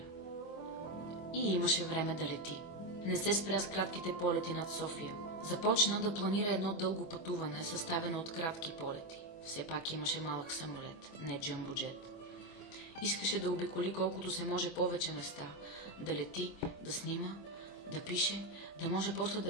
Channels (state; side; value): late; right; 24 ms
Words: И имаше време да лети. Не се спря с кратките полети над София. Започна да планира едно дълго пътуване, съставено от кратки полети. Все пак имаше малък самолет, не джъмбоджет. Искаше да обиколи колкото се може повече места, да лети, да снима, да пише, да може после